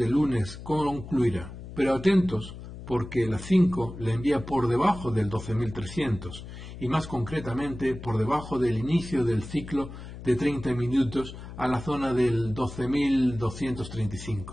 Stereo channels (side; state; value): left; noise; hum, 12 dB below the sound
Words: el lunes concluirá. Pero atentos, porque la 5 le envía por debajo del 12.300, y más concretamente por debajo del inicio del ciclo de 30 minutos a la zona del